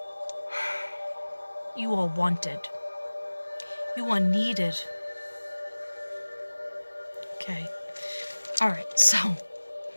You are wanted. You are needed. Okay. All right. So,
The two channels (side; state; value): both; inverted; correlation -1.00